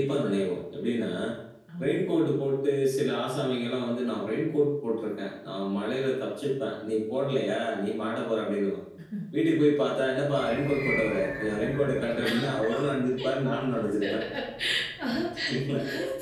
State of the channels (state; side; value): identical; both; correlation 1.00